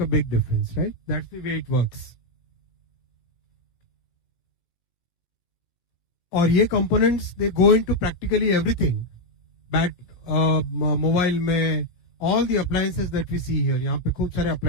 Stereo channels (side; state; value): right; late; 17 ms